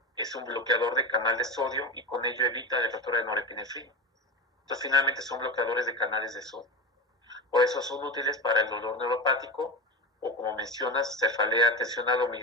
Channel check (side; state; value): both; normal; correlation 0.23